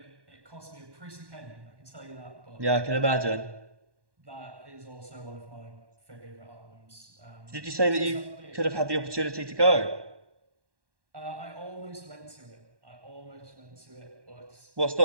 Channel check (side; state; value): left; late; 1.1 ms